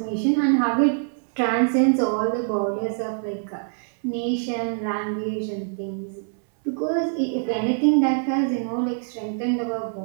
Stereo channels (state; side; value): silent; left; digital silence